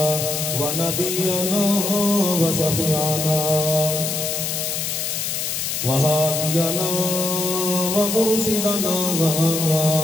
ونبينا وشفيعنا وهادينا ومرشدنا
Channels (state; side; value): noise; left; hiss, 2 dB below the sound